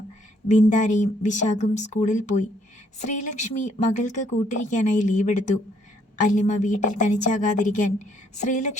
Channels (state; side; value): normal; both; correlation 0.67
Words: ബിന്ദാരയും വിശാഖും സ്കൂളിൽ പോയി. ശ്രീലക്ഷ്മി മകൾക്ക് കൂട്ടിരിക്കാനായി ലീവെടുത്തു. അല്ലിമ വീട്ടിൽ തനിച്ചാകാതിരിക്കാൻ